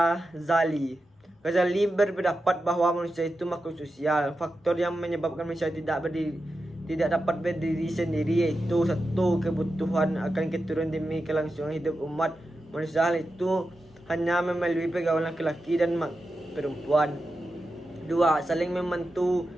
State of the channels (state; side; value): normal; both; correlation 0.90